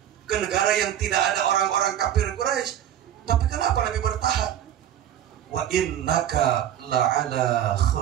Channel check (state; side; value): quieter; left; 10.9 dB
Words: ke negara yang tidak ada orang-orang kafir Quraisy. Tapi kenapa Nabi bertahan? Wa innaka la'ala